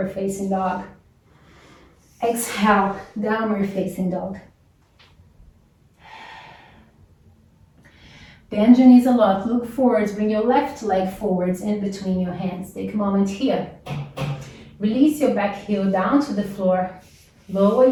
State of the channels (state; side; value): identical; both; correlation 1.00